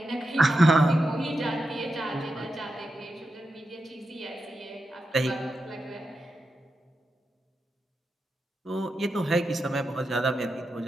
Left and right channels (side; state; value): both; normal; correlation 0.88